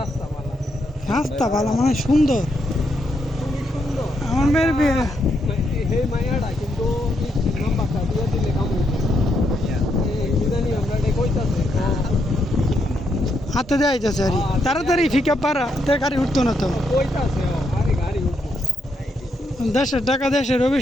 মালা রাস্তা ভালো মানে সুন্দর খুবই সুন্দর আমার মেয়ের বিয়ে হে মায়াটা কিন্তু নাম্বারটা দিয়ে দিলে কাম কি জানি আমরা এটা কইতাছে হাতে দেওয়া যাচ্ছে আর তাড়াতাড়ি ফিকা পারা তে গাড়ি উঠতো না তো কইতাছে আরে গাড়ি উঠবো দেশের টাকা দেশের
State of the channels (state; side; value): normal; both; correlation 0.78